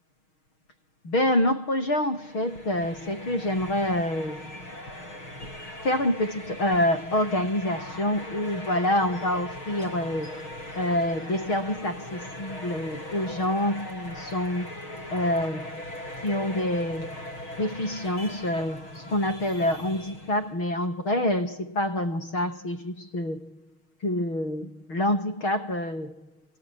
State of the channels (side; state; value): right; late; 6.4 ms